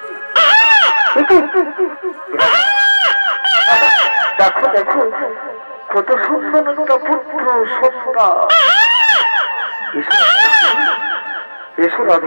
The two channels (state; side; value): inverted; both; correlation -1.00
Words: দেখো দেখো কত সুন্দর একটা পুত্র সন্ধ্যা। এসো